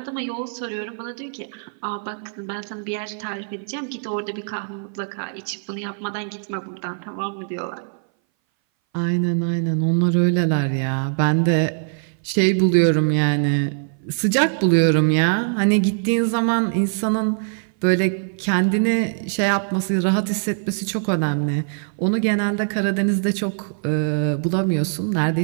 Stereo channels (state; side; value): silent; left; 60 dB below the other